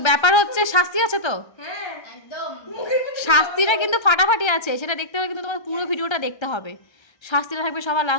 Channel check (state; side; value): late; right; 1.3 ms